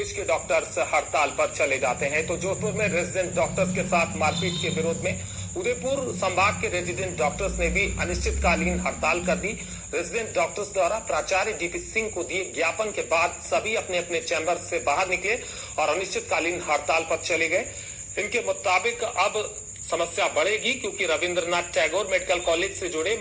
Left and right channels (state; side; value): identical; both; correlation 1.00